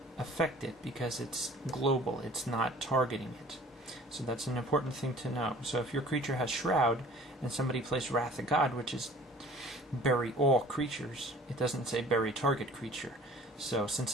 affect it because it's global, it's not targeting it. So that's an important thing to know. So if your creature has Shroud and somebody plays Wrath of God, which is bury all creatures, it doesn't say bury target creature. So since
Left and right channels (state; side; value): normal; both; correlation 0.49